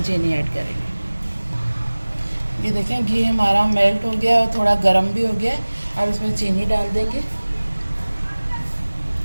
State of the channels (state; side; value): inverted; both; correlation -1.00